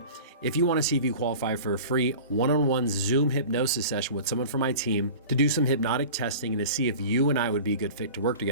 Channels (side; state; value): both; inverted; correlation -0.38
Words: if you want to see if you qualify for a free one-on-one Zoom hypnosis session with someone from my team to do some hypnotic testing and to see if you and I would be a good fit to work